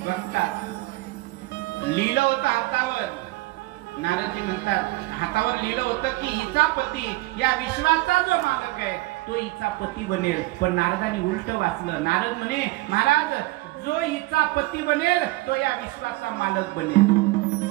बघतात, लिहिलं होतं हातावर. नारदजी म्हणतात हातावर लिहिलं होतं की हिचा पती या विश्वाचा जो मालक आहे तो हिचा पती बनेल. पण नारदानी उलट वाचलं. नारद म्हणे महाराज, जो हिचा पती बनेल तो या विश्वाचा मालक बनेल.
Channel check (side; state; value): left; quieter; 20.4 dB